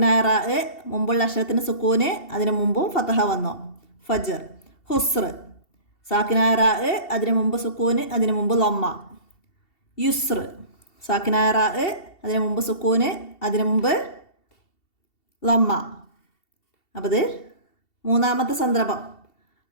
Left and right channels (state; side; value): late; right; 2.7 ms